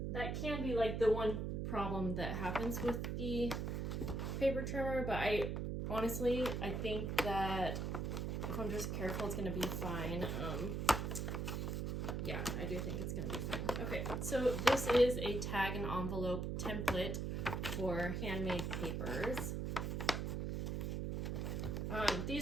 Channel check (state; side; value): noise; right; hum, 1 dB below the sound